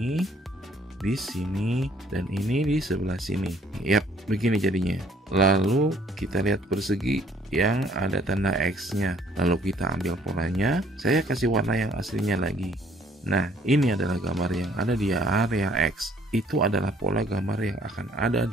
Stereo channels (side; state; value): both; normal; correlation 0.62